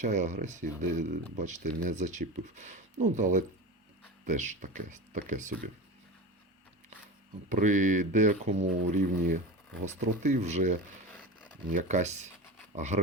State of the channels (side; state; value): both; normal; correlation 0.28